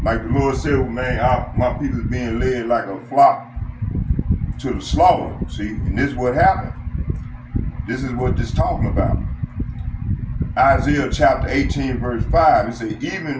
Like the Lord said, man, my people is being led like a flock to the slaughter. See, and this is what happened. This is what this talking about. Isaiah chapter 18, verse 5, it says,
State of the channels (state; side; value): identical; both; correlation 1.00